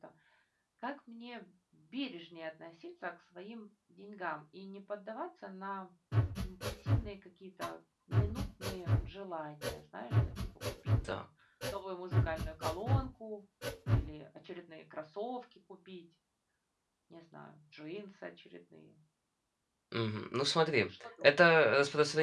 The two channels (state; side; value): identical; both; correlation 1.00